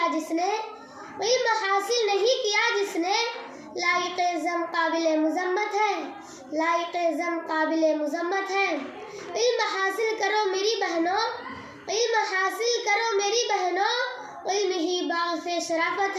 جس نے، علم حاصل نہیں کیا جس نے، لائق ذم قابل مذمت ہے، لائق ذم قابل مذمت ہے۔ علم حاصل کرو میری بہنوں، علم حاصل کرو میری بہنوں، علم ہی باغ سے شرافت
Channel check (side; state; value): both; identical; correlation 1.00